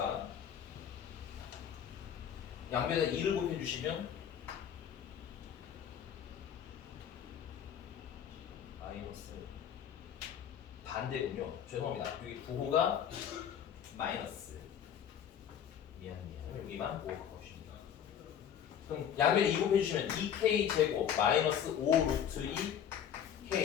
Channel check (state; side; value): quieter; right; 9.0 dB